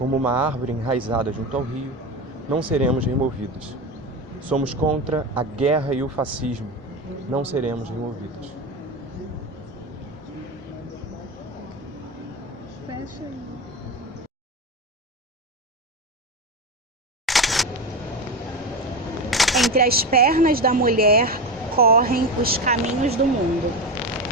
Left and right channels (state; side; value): normal; both; correlation 0.20